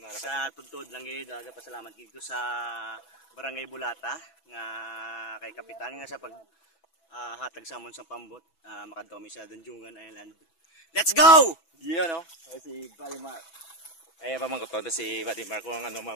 Sa tuntod lang gid, pasalamat dito sa Barangay Bulata nga kay kapitan nga sa pag hatag sa amon sa pambot, makadto mi sa Danjungan Island. Let's go! Yeah, no? Si Buddy Mark. Ay, pamangkot ko si Buddy Mark kung ano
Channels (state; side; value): late; right; 6.1 ms